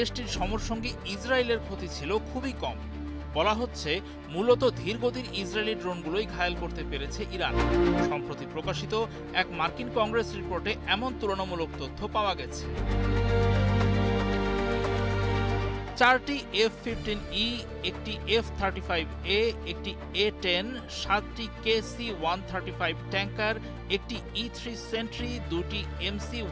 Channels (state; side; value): identical; both; correlation 1.00